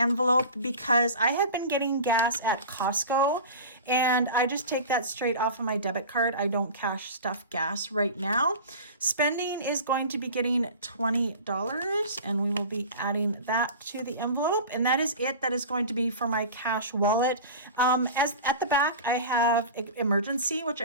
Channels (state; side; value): inverted; both; correlation -0.34